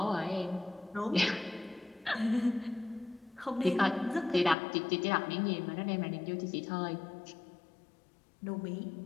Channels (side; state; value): right; drops out; at 4.5 s